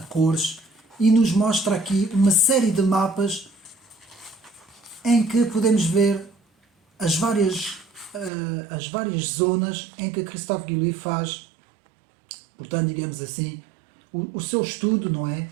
cores, e nos mostra aqui uma série de mapas em que podemos ver as várias zonas em que Christophe Guillouis faz, portanto, digamos assim, o seu estudo, não é?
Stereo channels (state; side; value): drops out; left; at 8.3 s